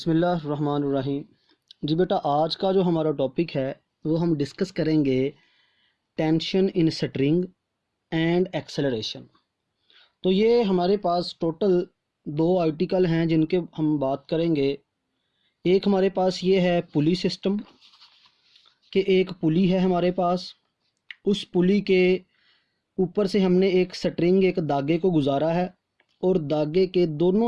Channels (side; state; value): both; identical; correlation 1.00